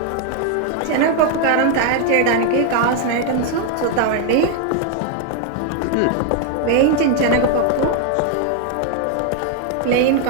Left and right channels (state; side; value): different; both; correlation 0.00